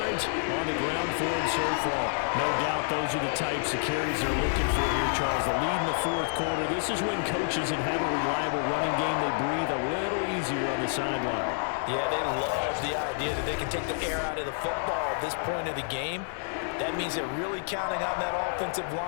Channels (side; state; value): right; silent; 57 dB below the other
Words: on the ground for him so far. No doubt those are the types of carries they're looking for here, Charles. The lead in the 4th quarter. This is when coaches that have a reliable running game, they breathe a little easier on the sideline. Yeah, they love the idea that they can take the air out of the football at this point of the game. That means they're really counting on that offensive